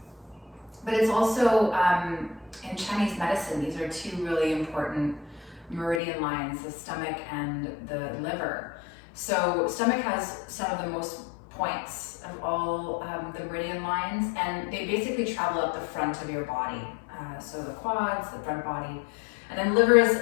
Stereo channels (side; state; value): right; drops out; at 6.0 s